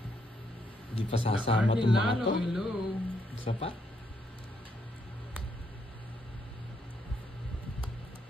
Hindi pa sasama itong mga to. Hello. Isa pa?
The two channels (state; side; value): normal; both; correlation 0.75